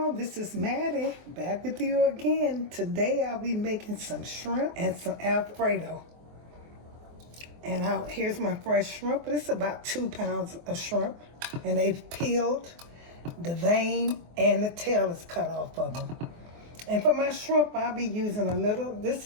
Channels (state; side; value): late; left; 24 ms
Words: this is Mattie, back with you again. Today I'll be making some shrimp and some Alfredo. And here's my fresh shrimp. This is about 2 pounds of shrimp. And they've peeled, the vein and the tail is cut off of them. And for my shrimp, I'll be using a little, this